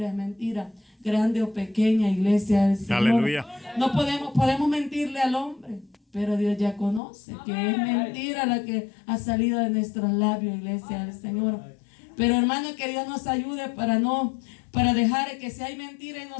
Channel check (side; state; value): right; drops out; at 7.0 s